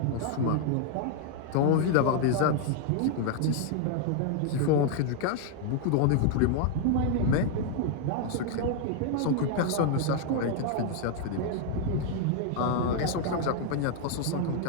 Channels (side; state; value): both; different; correlation 0.00